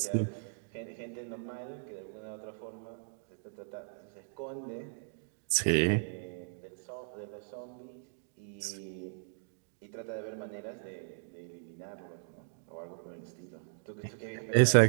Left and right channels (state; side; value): silent; left; digital silence